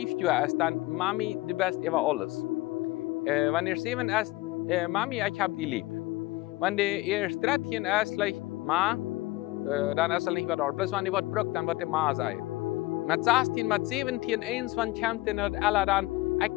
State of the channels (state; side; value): quieter; right; 19.8 dB